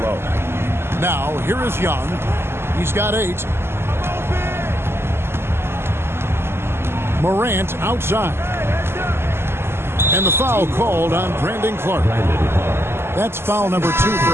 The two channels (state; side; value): late; left; 0.12 ms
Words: low. Now, here is Young. He's got 8. Morant outside. And the foul called on Brandon Clark. That's foul number 2